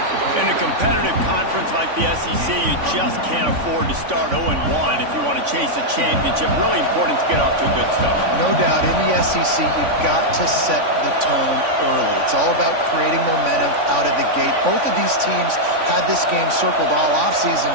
In a competitive conference like the SEC, you just can't afford to start 0-1 if you want to chase a championship. Really important to get off to a good start. No doubt, in the SEC, you've got to set the tone early. It's all about creating momentum out of the gate. Both of these teams had this game circled all offseason,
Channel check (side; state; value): left; late; 3.5 ms